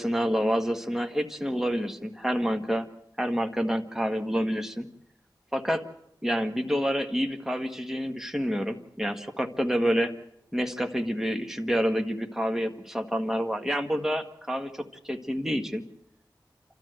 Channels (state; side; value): normal; both; correlation 0.94